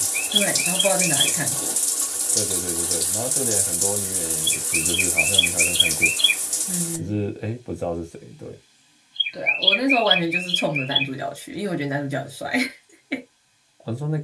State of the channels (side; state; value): both; identical; correlation 1.00